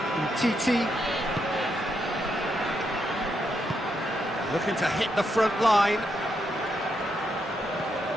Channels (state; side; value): normal; both; correlation 0.80